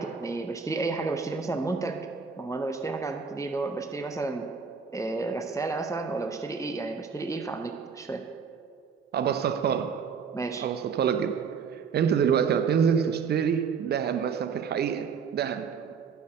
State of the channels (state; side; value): quieter; left; 6.0 dB